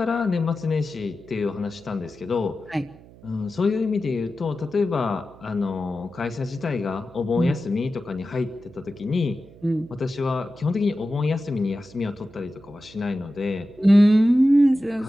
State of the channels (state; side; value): noise; right; hum, 22 dB below the sound